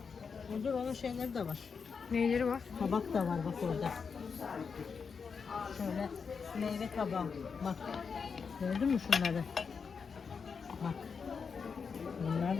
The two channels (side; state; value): right; quieter; 5.7 dB